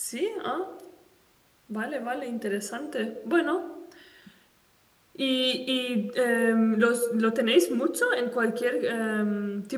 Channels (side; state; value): both; identical; correlation 1.00